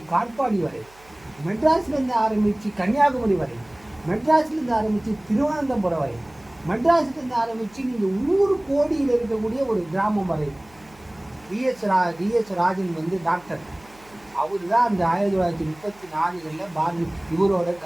காட்பாடி வரை, மெட்ராஸ்லேருந்து ஆரம்பித்து கன்னியாகுமரி வரை, மெட்ராஸ்லேருந்து ஆரம்பித்து திருவனந்தபுரம் வரை, மெட்ராஸ்லேருந்து ஆரம்பித்து நீங்கள் ஊர் கோடியில் இருக்கக்கூடிய ஒரு கிராமம் வரை. டிஎஸ் ராஜன் வந்து டாக்டர், அவர் தான் அந்த 1934 இவரோட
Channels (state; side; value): noise; right; hum, 27 dB below the sound